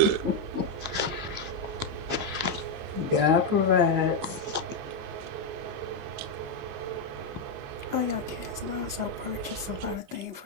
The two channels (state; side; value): late; left; 19 ms